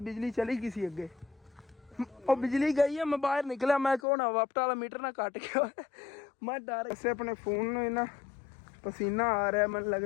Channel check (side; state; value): right; drops out; at 4.0 s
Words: ਬਿਜਲੀ ਚਲੀ ਗਈ ਸੀ ਅੱਗੇ, ਉਹ ਬਿਜਲੀ ਗਈ ਹੈ। ਮੈਂ ਬਾਹਰ ਨਿਕਲਿਆ, ਮੈਂ ਕਹੋ ਨਾ ਵਾਪਟਾ ਵਾਲਾ ਮੀਟਰ ਨਾ ਕੱਟ ਗਿਆ, ਮੈਂ ਡਰ ਵੈਸੇ ਆਪਣੇ ਫੋਨ ਨੂੰ ਇੰਨਾ ਪਸੀਨਾ ਆ ਰਿਹਾ, ਮੈਨੂੰ